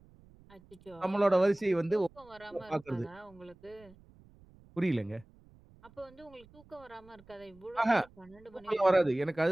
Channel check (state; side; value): noise; right; rumble, 26 dB below the sound